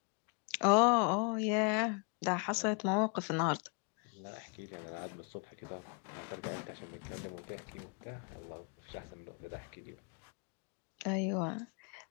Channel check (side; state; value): right; quieter; 37.2 dB